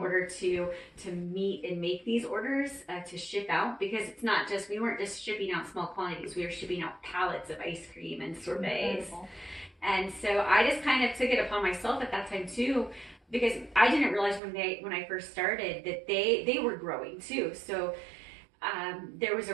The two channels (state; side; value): drops out; left; at 14.4 s